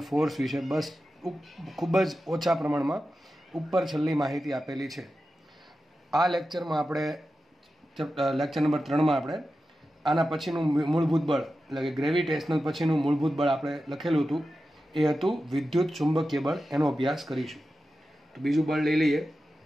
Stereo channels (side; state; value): both; normal; correlation 0.92